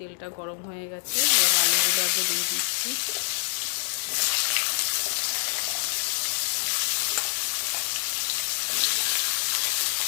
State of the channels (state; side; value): silent; right; digital silence